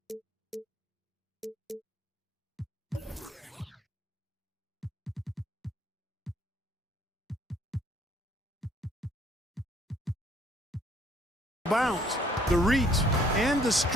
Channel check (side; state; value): both; normal; correlation 0.62